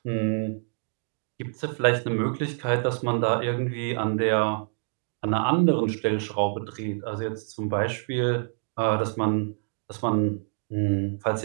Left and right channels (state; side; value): silent; left; digital silence